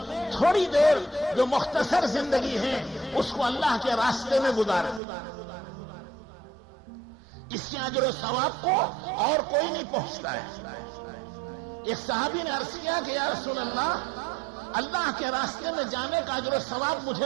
تھوڑی دیر جو مختصر زندگی ہے اس کو اللہ کے راستے میں گزارے. اس کے اجر و ثواب کو اور کوئی نہیں پہنچتا ہے. ایک صحابی نے عرض کیا کہ یا رسول اللہ کے راستے میں جانے کا اجر و ثواب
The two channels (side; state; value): left; drops out; at 5.0 s